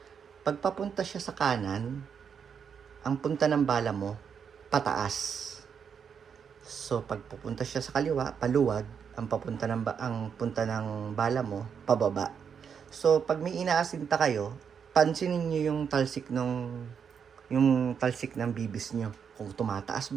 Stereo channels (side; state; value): left; quieter; 7.0 dB